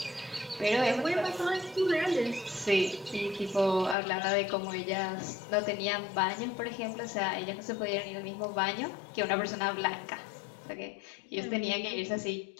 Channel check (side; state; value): right; drops out; at 4.0 s